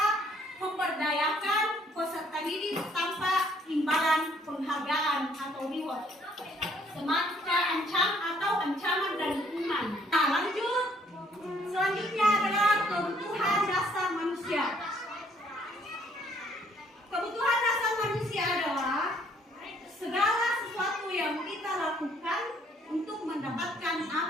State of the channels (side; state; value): both; normal; correlation 0.64